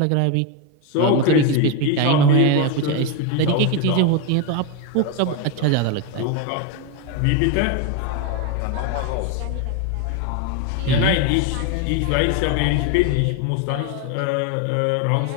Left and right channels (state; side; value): different; both; correlation 0.02